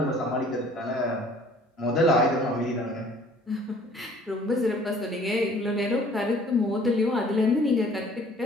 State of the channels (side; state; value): both; normal; correlation 0.54